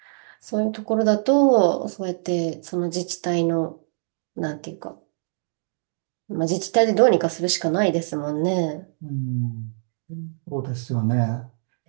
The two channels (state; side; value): silent; left; digital silence